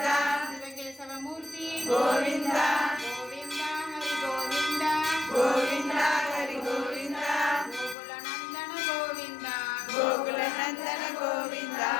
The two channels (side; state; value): right; drops out; at 8.0 s